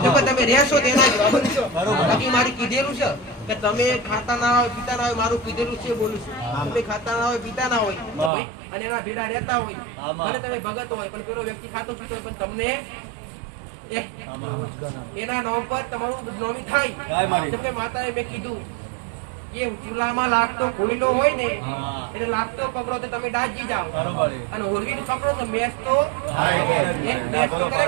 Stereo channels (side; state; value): left; drops out; at 8.3 s